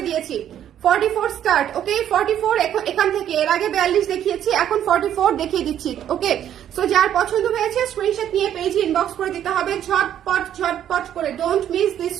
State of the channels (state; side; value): quieter; left; 10.5 dB